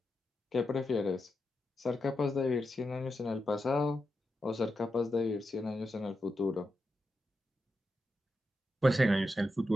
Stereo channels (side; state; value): both; normal; correlation 0.87